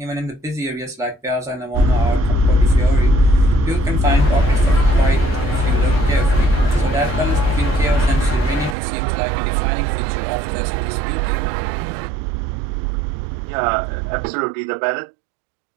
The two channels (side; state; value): left; drops out; at 8.8 s